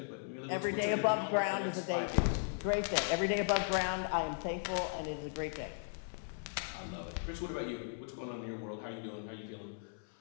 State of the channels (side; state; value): right; silent; 53 dB below the other